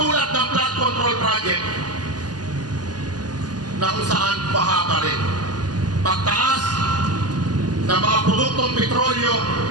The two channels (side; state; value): left; late; 0.69 ms